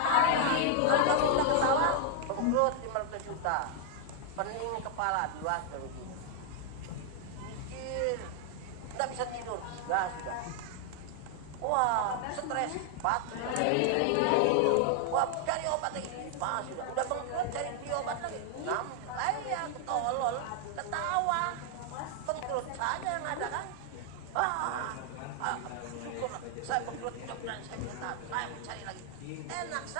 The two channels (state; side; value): different; both; correlation 0.00